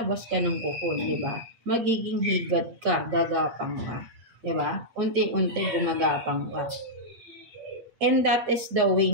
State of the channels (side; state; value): left; late; 8.8 ms